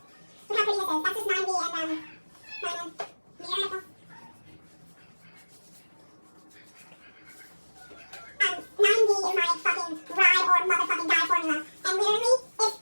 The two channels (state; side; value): inverted; both; correlation -1.00